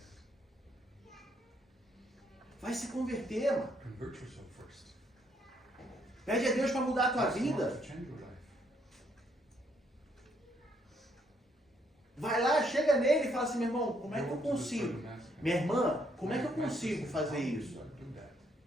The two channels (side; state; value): both; normal; correlation 0.71